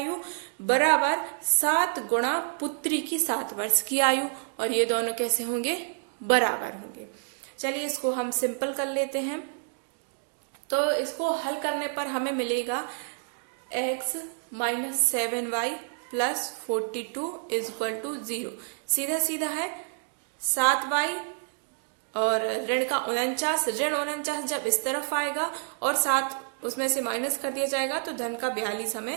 बराबर 7 गुणा पुत्री की 7 वर्ष की आयु, और ये दोनों कैसे होंगे, बराबर होंगे। चलिए इसको हम सिंपल कर लेते हैं। तो इसको हल करने पर हमें मिलेगा x - 7y + 42 = 0। सीधा सीधा है 7y और ऋण का 49, ऋण 49 जब इस तरफ आएगा और 7 उसमें से माइनस कर दिया जाएगा तो धन का 42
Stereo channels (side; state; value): left; silent; digital silence